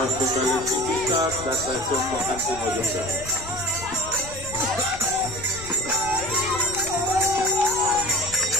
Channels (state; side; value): noise; left; rumble, 14 dB below the sound